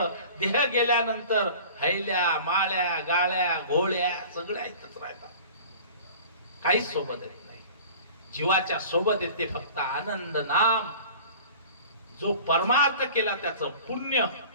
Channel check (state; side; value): inverted; both; correlation -0.42